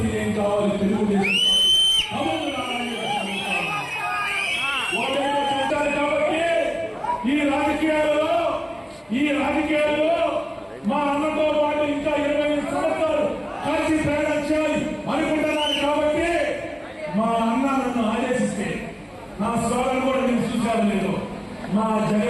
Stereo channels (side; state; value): both; identical; correlation 1.00